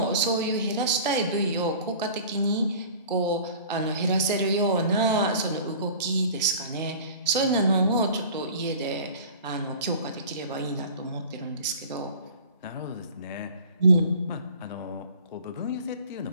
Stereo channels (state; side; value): inverted; both; correlation -0.43